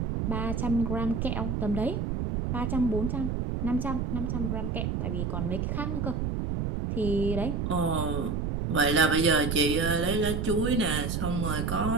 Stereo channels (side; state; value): right; noise; rumble, 1 dB below the sound